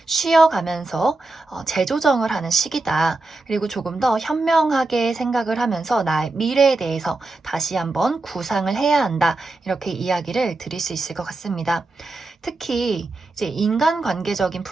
쉬어가면서 재조정을 하는 시기다. 그리고 조금 더 현명하게 생각을 하면서 나의 미래에 대해서 다시 한번 구상을 해야 한다. 이렇게 이야기를 드릴 수 있을 것 같습니다. 특히 이제 인간관계적인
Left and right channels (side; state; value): left; quieter; 3.2 dB